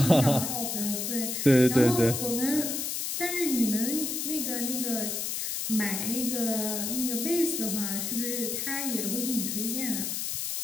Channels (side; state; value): left; noise; hiss, 2 dB below the sound